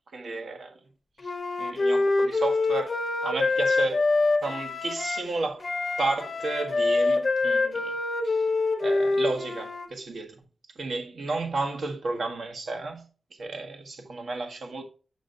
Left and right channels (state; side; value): normal; both; correlation 0.91